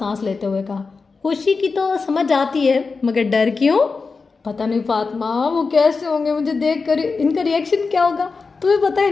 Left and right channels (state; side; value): quieter; right; 4.5 dB